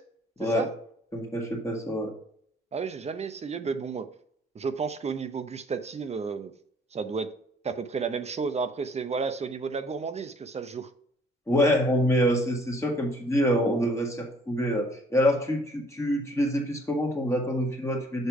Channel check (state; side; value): normal; both; correlation 0.59